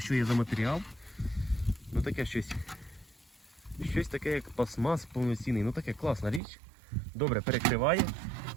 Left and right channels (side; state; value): left; drops out; at 6.4 s